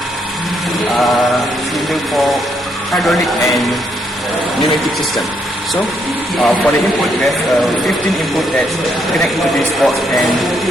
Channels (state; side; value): normal; both; correlation 0.74